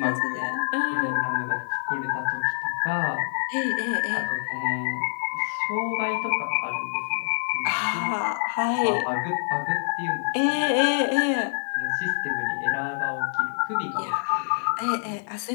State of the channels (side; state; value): right; silent; digital silence